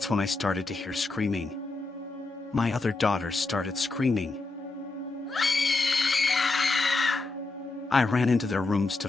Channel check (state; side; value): quieter; right; 3.5 dB